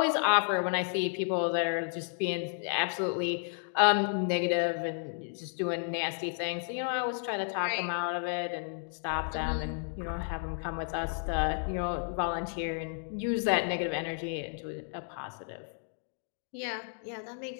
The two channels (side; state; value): right; silent; 56 dB below the other